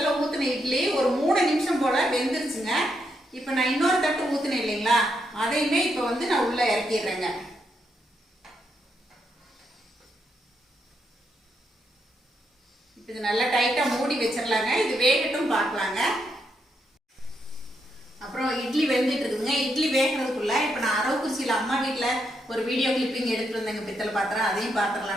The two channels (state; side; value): normal; both; correlation 0.80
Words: ஊற்றின இட்லி ஒரு 3 நிமிஷம் போல் வெந்துருச்சுங்க. இப்போ நான் இன்னொரு தட்டு ஊற்றினேன் இல்லைங்களா, அதையுமே இப்போ வந்து நான் உள்ளே இறக்கிடுறேங்க. இது நல்லா டைட்டாக மூடி வச்சிடலாங்க. இது வேகட்டும் பார்க்கலாங்க. அப்புறம் இட்லி வெந்துட்டு இருக்குதுங்க. இட்லி வேகிறதுக்குள்ள இப்போ நான் அரவக்குறிச்சியில் அம்மா வீட்டில் ஒரு வீடியோ கிளிப்பிங் எடுத்துகிட்டு வந்தேங்க பித்தளை பாத்திரம். அதையும்